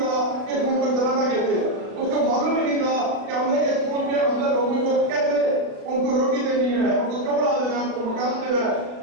था कि इस मुल्क को चलाना कैसे है, उसको मालूम ही नहीं था कि हमने इस मुल्क के अंदर लोगों को कैसे उनको रोटी देनी है, उनको कपड़ा देना है, उनको मकान देना है,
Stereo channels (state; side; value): late; left; 36 ms